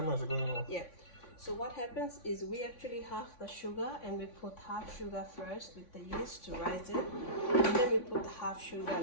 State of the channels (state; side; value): late; right; 3.5 ms